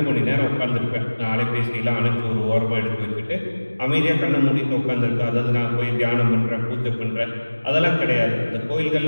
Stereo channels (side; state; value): both; inverted; correlation -1.00